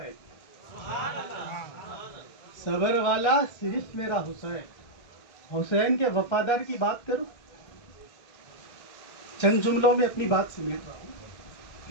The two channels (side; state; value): right; late; 1.3 ms